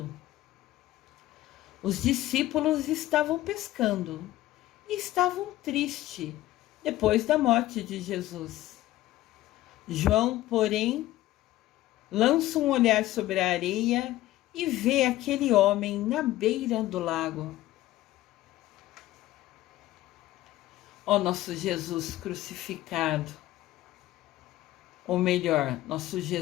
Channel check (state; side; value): quieter; right; 15.6 dB